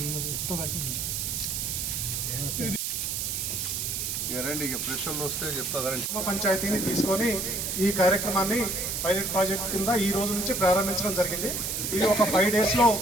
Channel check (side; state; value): right; noise; hiss, 2 dB below the sound